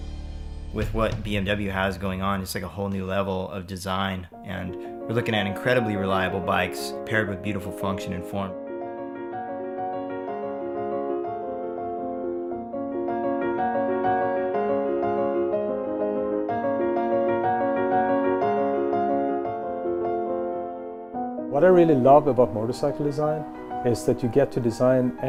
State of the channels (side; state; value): both; identical; correlation 1.00